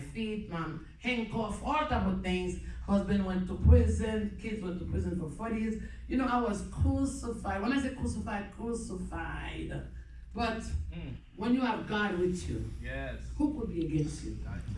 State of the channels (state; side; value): identical; both; correlation 1.00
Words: handcuff, all type of things. Husband went to prison, kids went to prison for 40 years. I was crucified. When I say crucified, crucified. But when you have God with you, yes, who could be against you?